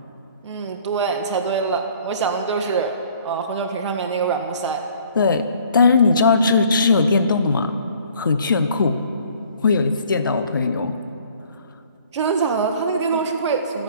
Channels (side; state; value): both; inverted; correlation -0.56